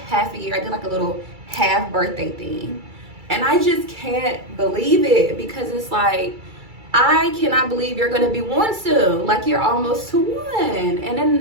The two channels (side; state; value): left; late; 2.3 ms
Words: a year. I did like a little half birthday theme. And I just can't believe it, because it's like, I cannot believe you're gonna be one soon. Like, you're almost to one. And